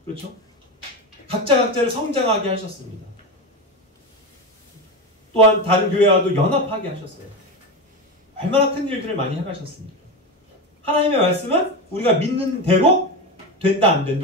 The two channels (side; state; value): both; normal; correlation 0.18